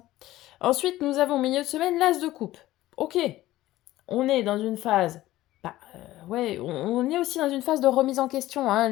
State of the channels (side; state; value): right; quieter; 15.8 dB